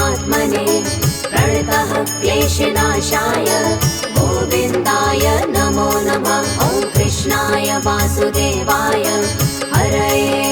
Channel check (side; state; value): both; identical; correlation 1.00